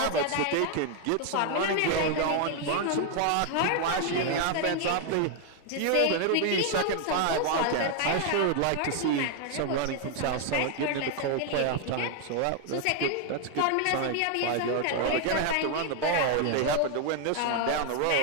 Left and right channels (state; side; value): different; both; correlation 0.00